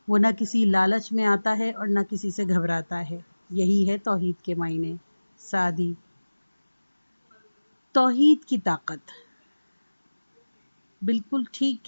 وہ نہ کسی لالچ میں آتا ہے اور نہ کسی سے گھبراتا ہے۔ یہی ہے توحید کے معنی۔ سعدی۔ توحید کی طاقت۔ بالکل ٹھیک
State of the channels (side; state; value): both; inverted; correlation -1.00